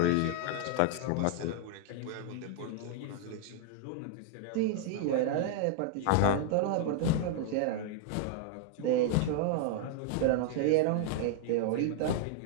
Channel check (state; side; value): different; both; correlation 0.00